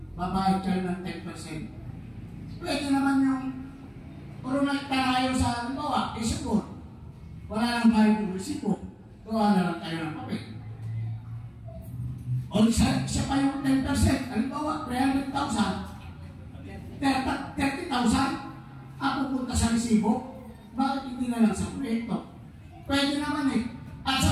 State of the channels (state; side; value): identical; both; correlation 1.00